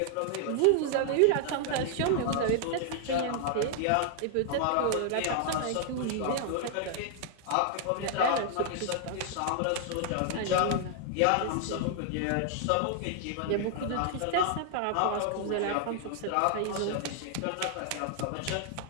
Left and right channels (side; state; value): both; different; correlation 0.00